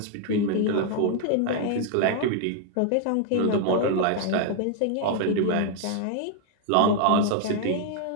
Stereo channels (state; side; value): different; both; correlation 0.00